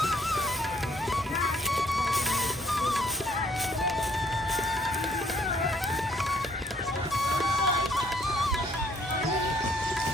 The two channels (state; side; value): normal; both; correlation 0.64